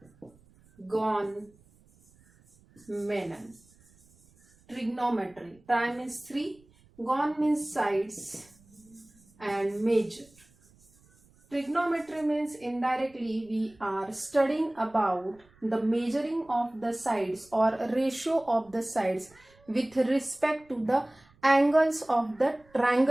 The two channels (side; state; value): right; noise; rumble, 30 dB below the sound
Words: Trigonometry. Tri means 3, gon means sides, and measure. Trigonometry means indirectly we are studying about the measuring of the sides or ratio of the sides with respect to the angles of the